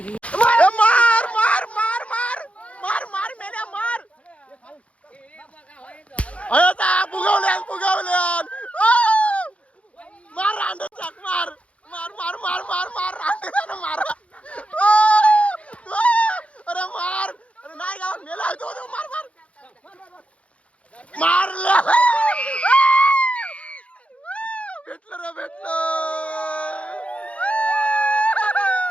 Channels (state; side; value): late; right; 0.063 ms